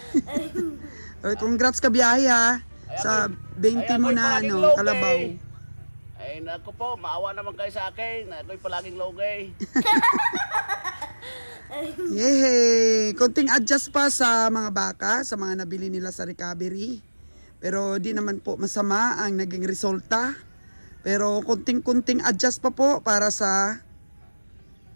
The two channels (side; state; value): both; inverted; correlation -1.00